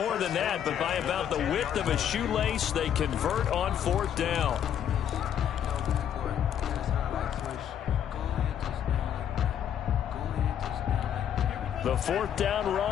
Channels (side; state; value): right; quieter; 9.5 dB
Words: than that, but by about the width of a shoelace, they convert on 4th down. The 4th down